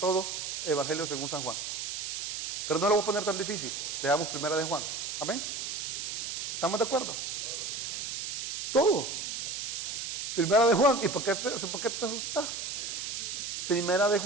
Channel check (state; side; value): noise; right; hiss, 4 dB below the sound